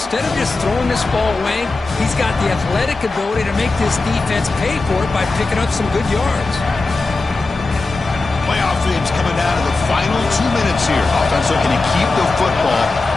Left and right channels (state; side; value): quieter; right; 3.5 dB